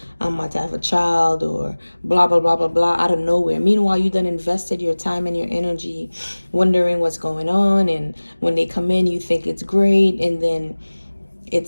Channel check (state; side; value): inverted; both; correlation -1.00